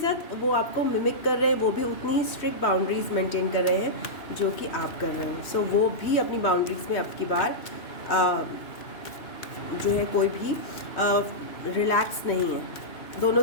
वो आपको मिमिक कर रहे हैं, वो भी उतनी ही स्ट्रिक्ट बाउंड्रीज मेंटेन कर रहे हैं जो कि आप कर रहे हो। सो वो भी अपनी बाउंड्रीज में अब की बार जो है कोई भी रिलैक्स नहीं है। दोनों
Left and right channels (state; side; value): late; right; 3.1 ms